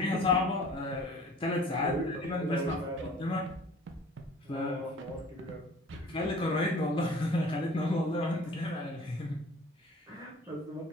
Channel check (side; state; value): both; normal; correlation 0.48